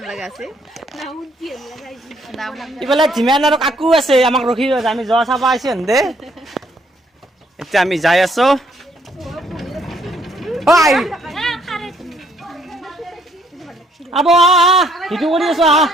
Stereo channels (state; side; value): normal; both; correlation 0.68